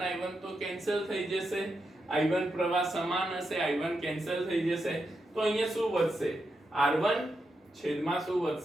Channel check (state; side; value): normal; both; correlation 0.85